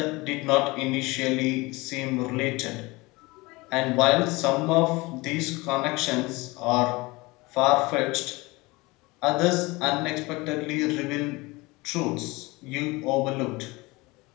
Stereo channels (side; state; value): right; quieter; 23.2 dB